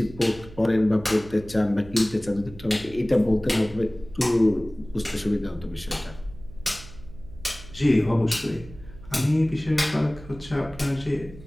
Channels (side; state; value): right; noise; hum, 18 dB below the sound